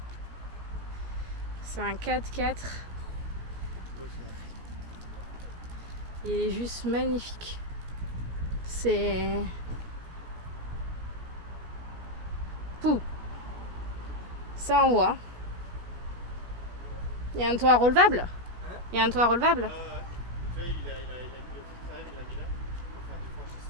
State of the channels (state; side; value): late; left; 17 ms